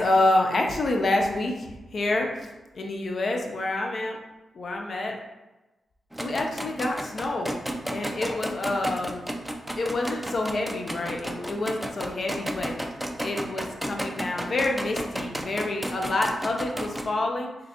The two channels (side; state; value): both; normal; correlation 0.89